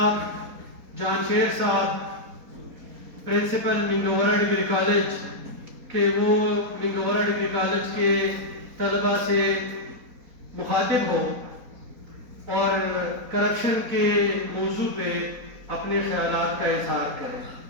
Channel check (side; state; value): left; late; 4.3 ms